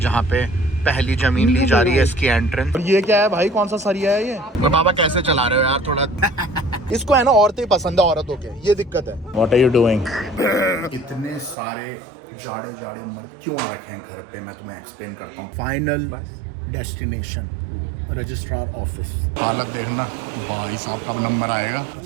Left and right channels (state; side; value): drops out; left; at 11.6 s